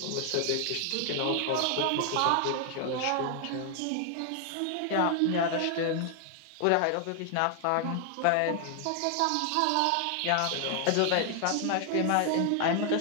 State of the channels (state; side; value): different; both; correlation 0.00